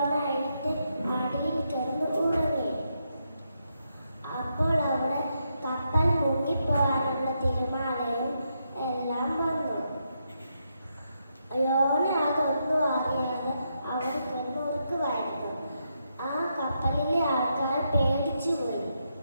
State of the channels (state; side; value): inverted; both; correlation -0.82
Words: എഴുന്നേറ്റ് അടിയിൽ കിടന്ന് ഉറങ്ങി. അപ്പോൾ അവിടെ കപ്പൽ മുങ്ങിപ്പോകാനുള്ള തിരമാലയും എല്ലാം വന്നു. യോന അതൊന്നും അറിയാതെ അവിടെ കിടന്ന് ഉറക്കുമായിരുന്നു. ആ കപ്പലിലെ ആൾക്കാർ പേടിച്ചുപോയി.